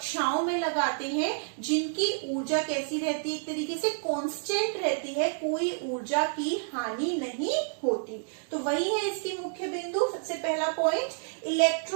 में लगाते हैं जिनकी ऊर्जा कैसी रहती है, एक तरीके से कांस्टेंट रहती है, कोई ऊर्जा की हानि नहीं होती। तो वही है इसकी मुख्य बिंदु। सबसे पहला पॉइंट,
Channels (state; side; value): silent; left; digital silence